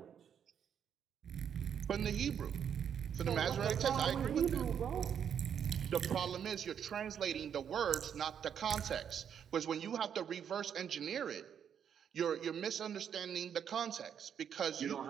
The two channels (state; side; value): quieter; left; 8.3 dB